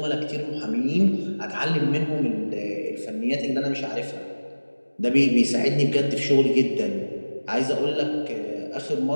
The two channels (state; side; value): inverted; both; correlation -1.00